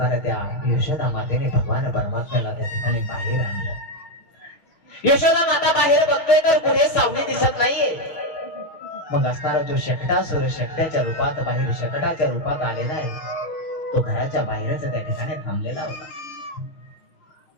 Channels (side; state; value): right; late; 6.1 ms